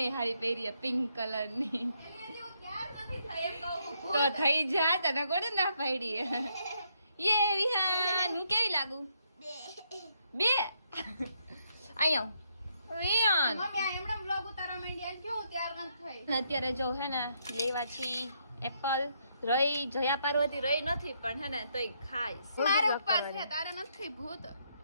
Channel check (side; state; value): both; inverted; correlation -0.75